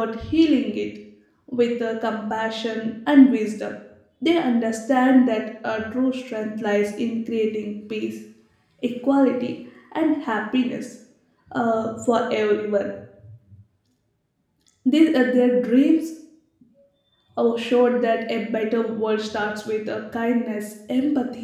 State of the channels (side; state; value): both; identical; correlation 1.00